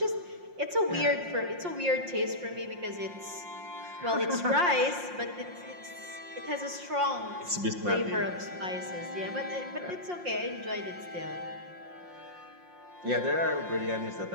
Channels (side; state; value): left; late; 5.6 ms